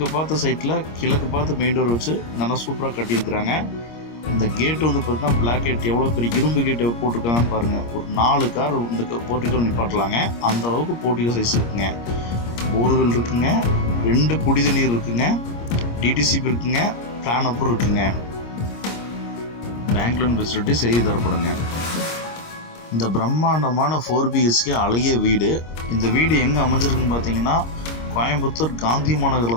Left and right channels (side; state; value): right; late; 26 ms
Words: பார்த்த சைட்டில் கிழக்கு பார்த்து மெயின் டோர் வச்சு நல்லா சூப்பராக கட்டியிருக்கிறாங்க. இந்த கேட்டு பார்த்திங்கன்னா பிளாக் கேட் எவ்வளோ பெரிய இரும்பு கேட்டு போட்டிருக்காங்கன்னு பாருங்கள். ஒரு 4 கார் இந்த போர்ட்டிக்கோ நிப்பாட்டலாங்க. அந்த அளவுக்கு போர்ட்டிக்கோ சைஸ் இருக்குங்க. போர்வெல் இருக்குங்க, 2 குடித நீர் இருக்குங்க, டிடிசிபி இருக்குங்க, பிளான் அப்புறம் இருக்குங்க. பேங்க் லோன் ஃபெசிலிட்டி செய்து தரப்படுங்க. இந்த பிரம்மாண்டமான 4 BHK அழகிய வீடு. இந்த வீடு எங்கே அமைஞ்சிருக்குன்னு பார்த்தீங்கன்னா கோயம்புத்தூர் காந்தி